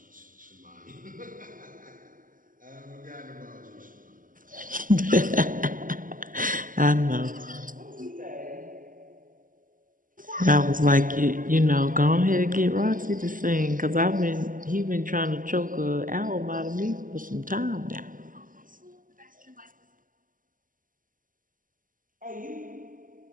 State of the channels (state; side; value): late; left; 0.39 ms